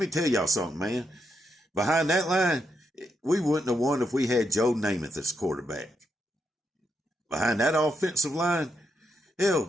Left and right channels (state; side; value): normal; both; correlation 0.81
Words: tell y'all something, man. Behind that line, we wouldn't have won if we had Joe Namath as quarterback. Behind that offensive line, hell,